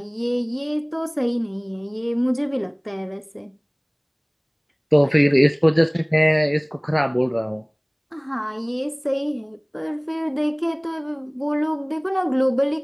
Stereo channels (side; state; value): both; identical; correlation 1.00